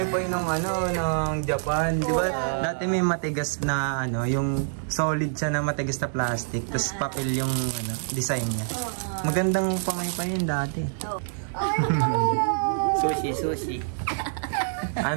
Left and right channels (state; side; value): silent; left; digital silence